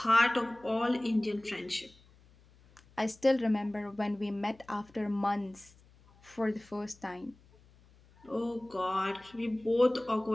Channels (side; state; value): left; noise; hum, 28 dB below the sound